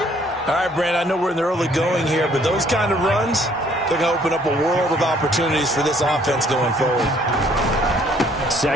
right, Brand, I know we're in the early going here, but those kind of runs, they're going to open up a world of opportunities for this offense going forward.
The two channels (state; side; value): normal; both; correlation 0.62